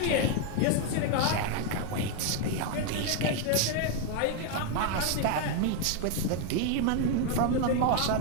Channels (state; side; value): different; both; correlation 0.01